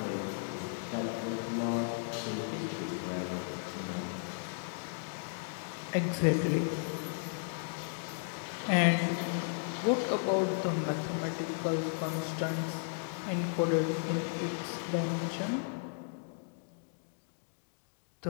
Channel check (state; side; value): silent; right; digital silence